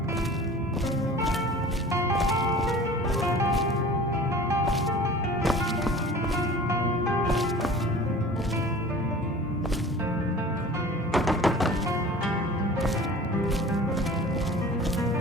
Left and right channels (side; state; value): both; normal; correlation 0.42